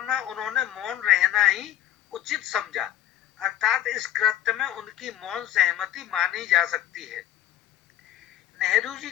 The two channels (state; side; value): quieter; right; 12.2 dB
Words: में उन्होंने मौन रहना ही उचित समझा, अर्थात इस कृत्य में उनकी मौन सहमति मानी जा सकती है। नेहरू जी